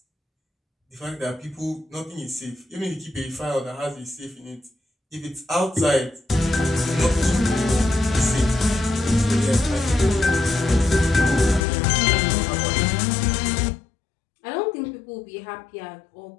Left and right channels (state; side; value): drops out; right; at 11.6 s